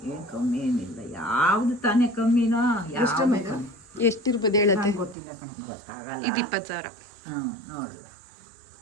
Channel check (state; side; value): drops out; left; at 5.2 s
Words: ಏನು ಕಮ್ಮಿ ಏನಿಲ್ಲ. ಯಾವ್ದು ತಾನೇ ಕಮ್ಮಿನೋ ಯಾವುದು ಕಮ್ಮಿ ಎಷ್ಟಿರ್ಬೋದು ಹೇಳುತ್ತೆ? ಗೊತ್ತಿಲ್ಲ ಕಣಪ್ಪ. ಗೊತ್ತಾಗಲ್ಲ. ಇದು 20,000. ನೋಡುವ